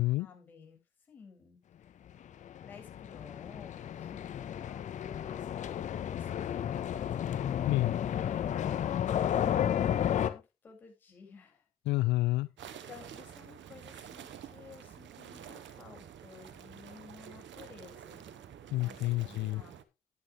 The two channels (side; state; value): right; quieter; 10.8 dB